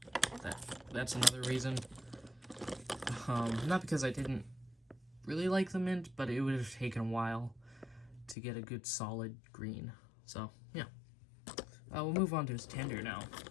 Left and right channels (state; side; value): drops out; right; at 8.3 s